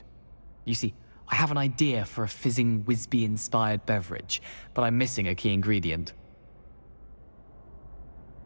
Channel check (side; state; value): both; inverted; correlation -1.00